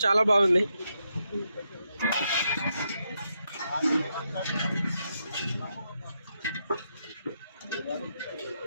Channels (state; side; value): inverted; both; correlation -0.82